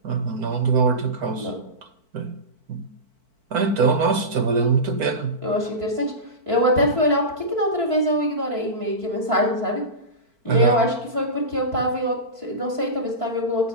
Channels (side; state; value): left; late; 4.5 ms